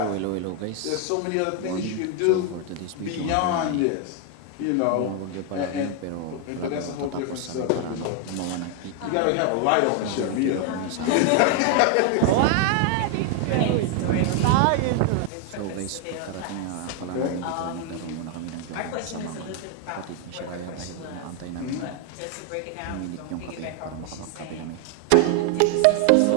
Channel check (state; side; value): different; both; correlation 0.01